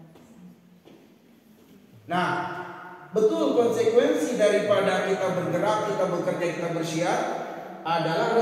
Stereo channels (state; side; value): identical; both; correlation 1.00